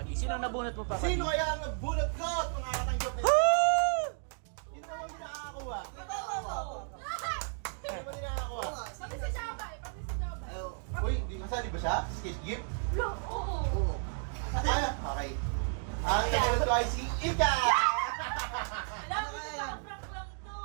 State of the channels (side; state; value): left; silent; 56 dB below the other